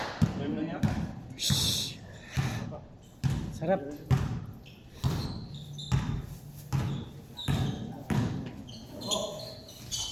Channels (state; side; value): identical; both; correlation 1.00